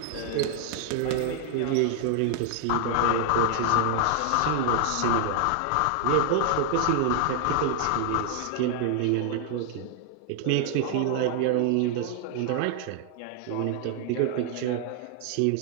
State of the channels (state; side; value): different; both; correlation 0.00